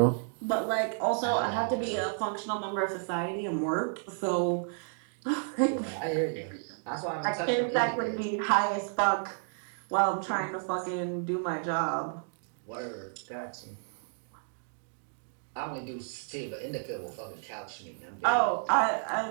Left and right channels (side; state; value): left; silent; digital silence